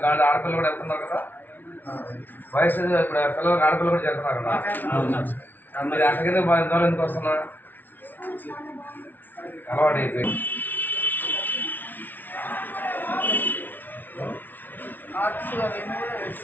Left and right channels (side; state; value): right; late; 0.087 ms